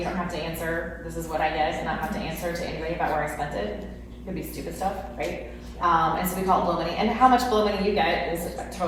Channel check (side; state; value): both; identical; correlation 1.00